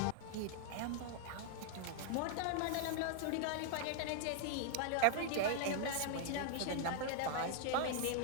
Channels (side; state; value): both; different; correlation 0.00